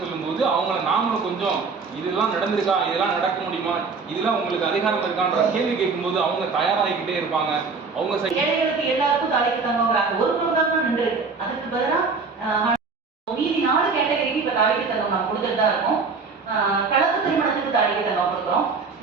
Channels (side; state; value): left; quieter; 4.7 dB